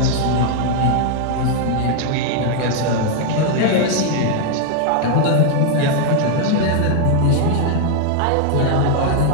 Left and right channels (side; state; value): both; different; correlation 0.00